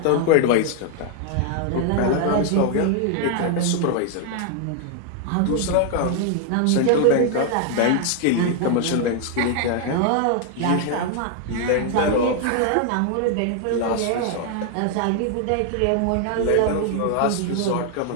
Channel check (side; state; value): both; different; correlation 0.00